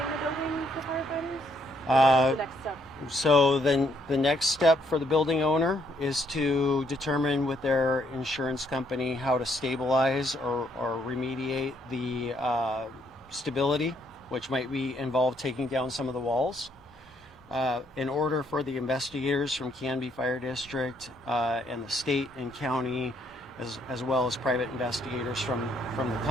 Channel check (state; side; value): normal; both; correlation 0.71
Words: building for firefighters? What's the next step? So then the next step for the building owner is to determine with their insurance company how to stabilize or remediate the stability, which might involve taking down some of the walls. In order for the investigators from Canby Fire District and the state and county, as well as private investigators from the